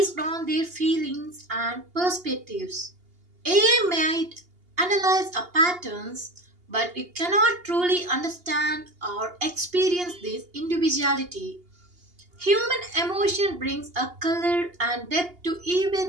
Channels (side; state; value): left; late; 2.8 ms